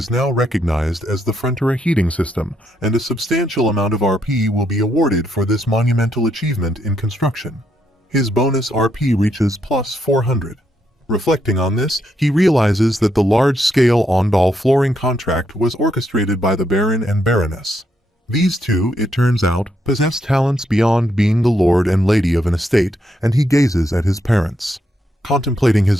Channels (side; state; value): both; normal; correlation 0.78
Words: now recognized as the Frontier heating system, and a substantial amount of RP will be awarded for this monumental achievement in construction. His bonus RP reaches plus 400. Reflecting on this, he realizes that the large-scale on-doll flooring contract was orchestrated by the Baron and Baroness. These two, it turns out, possess talents beyond being the lord and lady of an estate, and he gazes at his parents. Contemplating his